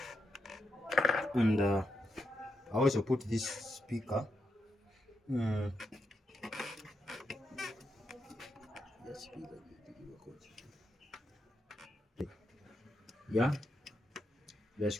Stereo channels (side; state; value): both; normal; correlation 0.84